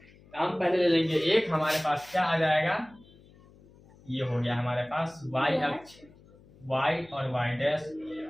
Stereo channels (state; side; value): noise; left; hum, 25 dB below the sound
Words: हम पहले ले लेंगे एक, हमारे पास क्या आ जाएगा, ये हो गया हमारे पास वाई अक्ष, वाई और वाई डैश,